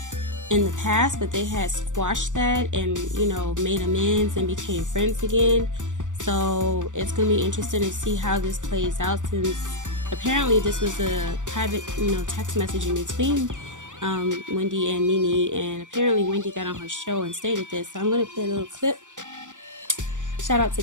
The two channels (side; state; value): left; late; 0.86 ms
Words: in the past, but they had squashed that and, made amends and became friends again. So it's going to be interesting to see how this plays out, since apparently this was a private, text message in between Wendy and NeNe, and apparently Wendy got on her show and stated this. So I'm going to play a little clip. Shout out to